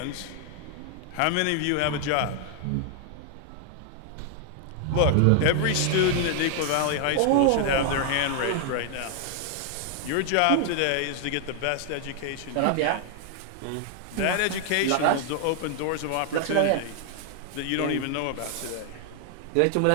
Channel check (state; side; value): different; both; correlation 0.00